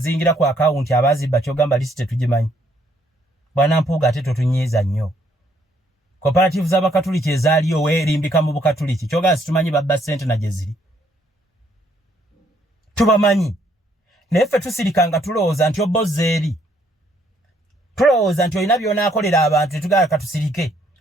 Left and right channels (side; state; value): both; normal; correlation 0.68